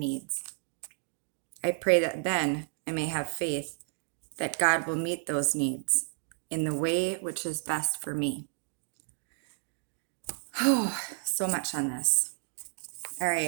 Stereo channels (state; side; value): silent; left; 57 dB below the other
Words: I pray that then I may have faith that God will meet those needs in the way which is best for me. Oh, so much on this. All